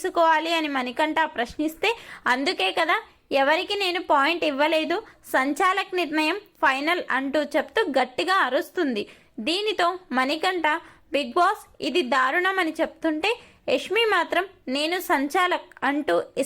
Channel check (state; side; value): identical; both; correlation 1.00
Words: అని మణికంఠ ప్రశ్నిస్తే, అందుకే కదా ఎవరికి నేను పాయింట్ ఇవ్వలేదు, సంచాలక్ నిర్ణయం ఫైనల్ అంటూ చెప్తూ గట్టిగా అరుస్తుంది. దీనితో మణికంఠ బిగ్ బాస్ ఇది దారుణం అని చెప్తుంటే యష్మి మాత్రం నేను సంచాలక్ అంటూ